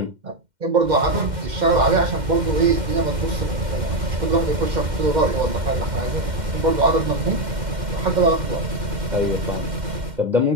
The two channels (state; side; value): late; left; 2.1 ms